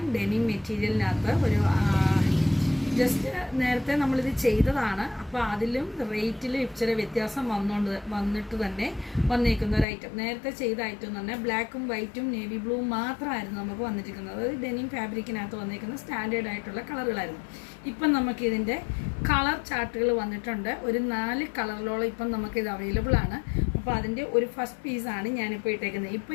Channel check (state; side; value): drops out; right; at 9.9 s